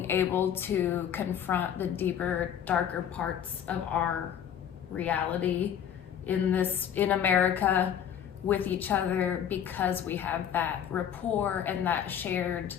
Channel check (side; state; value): right; quieter; 9.1 dB